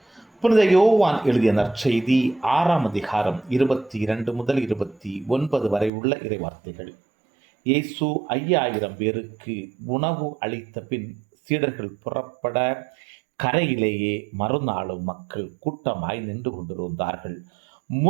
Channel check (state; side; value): drops out; left; at 5.9 s